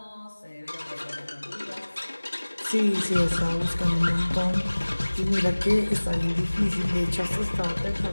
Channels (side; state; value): both; inverted; correlation -1.00